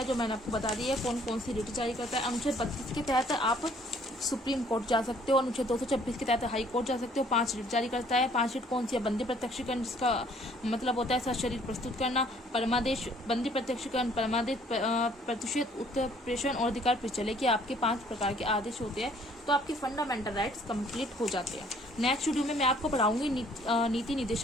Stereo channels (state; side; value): normal; both; correlation 0.60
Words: जो मैंने आपको बता दी है कौन कौन सी रिट जारी करता है। अनुच्छेद 32 के तहत आप सुप्रीम कोर्ट जा सकते हो, अनुच्छेद 226 के तहत हाई कोर्ट जा सकते हो। 5 रिट जारी करता है। 5 रिट कौन सी है? बंदी प्रत्यक्षीकरण, जिसका मतलब होता है सशरीर प्रस्तुत करना, परमादेश, बंदी प्रत्यक्षीकरण, परमादेश, प्रतिषेध, उत्प्रेषण और अधिकार प्रचले के आपके 5 प्रकार के आदेश होते हैं। तो आपके फंडामेंटल राइट्स कंप्लीट हो जाते हैं। नेक्स्ट वीडियो में मैं आपको पढ़ाऊंगी नीति